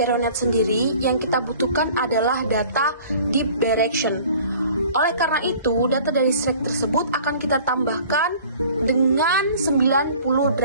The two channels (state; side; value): inverted; both; correlation -0.49